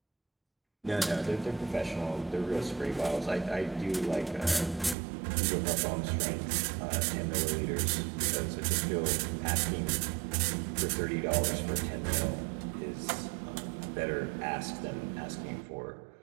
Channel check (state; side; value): drops out; left; at 5.0 s